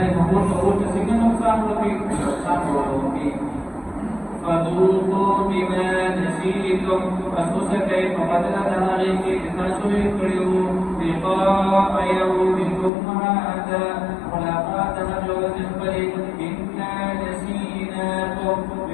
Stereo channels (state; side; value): drops out; right; at 12.9 s